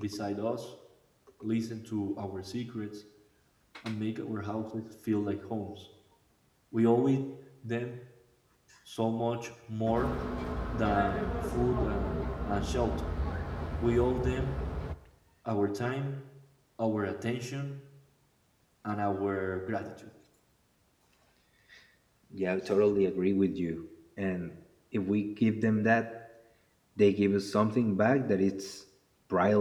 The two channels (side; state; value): both; identical; correlation 1.00